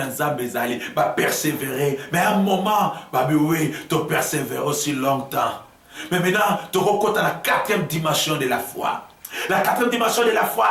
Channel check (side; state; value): both; identical; correlation 1.00